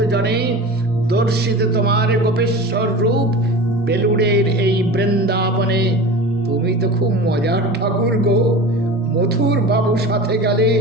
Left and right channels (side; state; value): both; normal; correlation 0.34